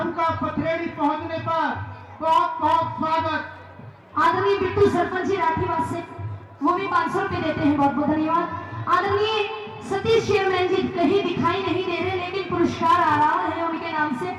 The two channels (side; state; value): both; identical; correlation 1.00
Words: पथरेड़ी पहुंचने पर बहुत बहुत स्वागत। आदरणीय बिट्टू सरपंच जी राठीवास से वो भी 500 रुपए देते हैं, बहुत बहुत धन्यवाद। आदरणीय सतीश चेयरमैन जी कहीं दिखाई नहीं दे रहे, लेकिन पुरस्कार आ रहा है उनके नाम से।